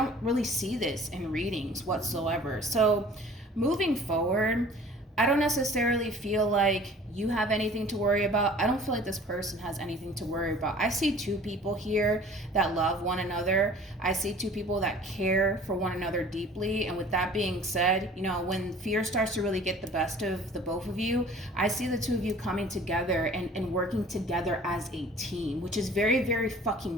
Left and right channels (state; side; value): normal; both; correlation 0.48